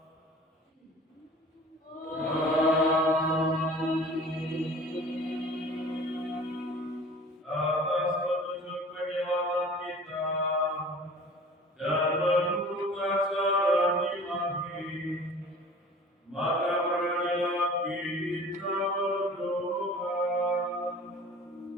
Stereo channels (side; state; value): both; normal; correlation 0.44